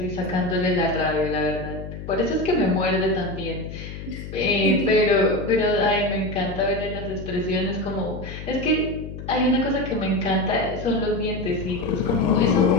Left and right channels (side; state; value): left; noise; hum, 10 dB below the sound